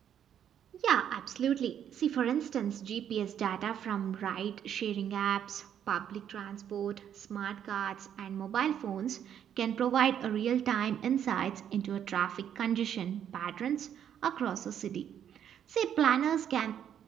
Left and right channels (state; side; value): quieter; left; 9.3 dB